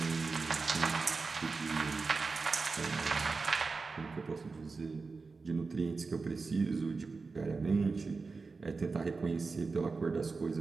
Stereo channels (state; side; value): quieter; left; 4.3 dB